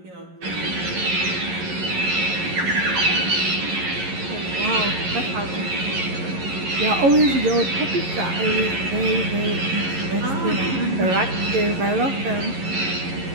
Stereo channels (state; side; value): late; left; 11 ms